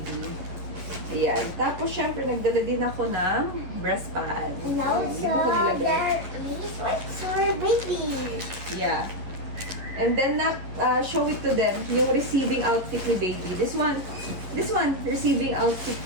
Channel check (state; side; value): late; left; 11 ms